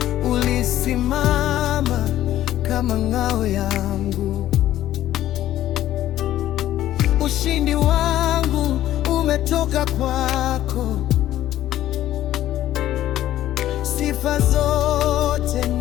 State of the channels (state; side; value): quieter; right; 13.2 dB